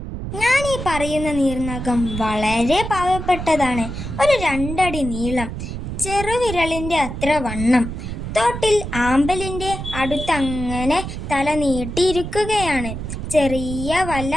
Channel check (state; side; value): noise; right; rumble, 7 dB below the sound